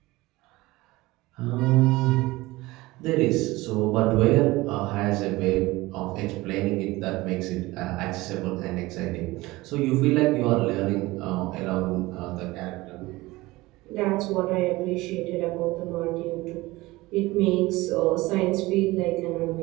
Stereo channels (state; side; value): quieter; left; 20.1 dB